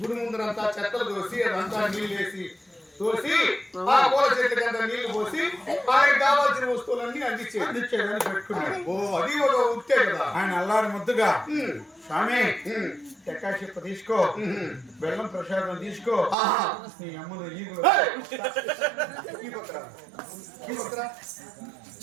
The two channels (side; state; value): left; drops out; at 16.4 s